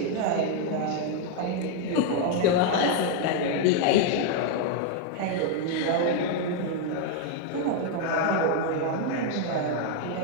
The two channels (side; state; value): both; different; correlation 0.00